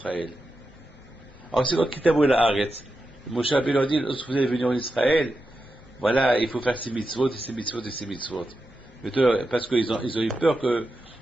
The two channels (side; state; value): left; noise; rumble, 28 dB below the sound